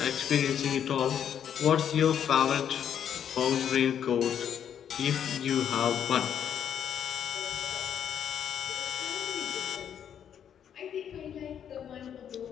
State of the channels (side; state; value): right; quieter; 8.8 dB